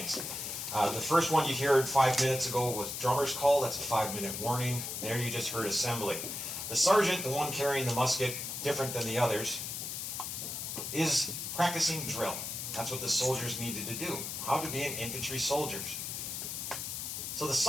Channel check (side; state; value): left; noise; hiss, 5 dB below the sound